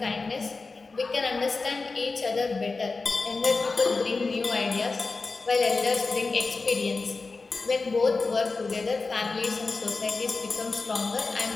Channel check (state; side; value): quieter; right; 4.0 dB